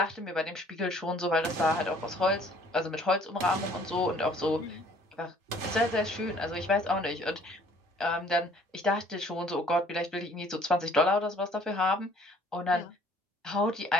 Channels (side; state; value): both; normal; correlation 0.57